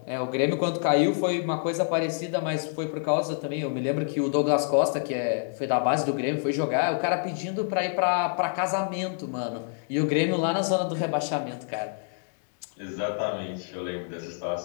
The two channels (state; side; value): silent; right; digital silence